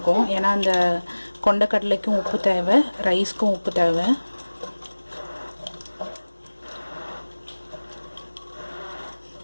ஏன்னா அந்த கொண்டக்கடலைக்கும் உப்பு தேவை, ரைஸ்க்கும் உப்பு தேவை.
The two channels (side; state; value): both; inverted; correlation -1.00